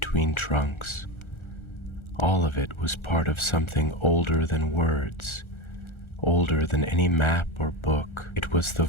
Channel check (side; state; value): right; late; 1.4 ms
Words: trunks. All of it was part of something older than words, older than any map or book. It was the